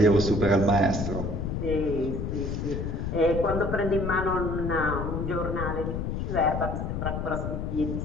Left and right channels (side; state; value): left; noise; rumble, 3 dB below the sound